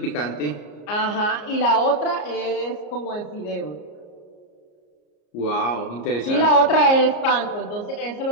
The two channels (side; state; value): right; late; 34 ms